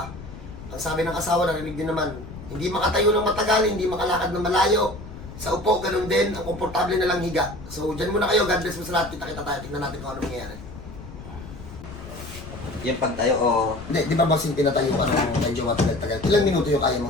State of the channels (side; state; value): left; noise; rumble, 13 dB below the sound